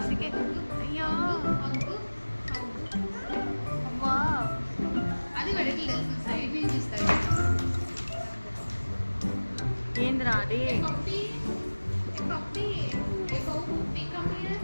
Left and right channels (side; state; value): both; inverted; correlation -1.00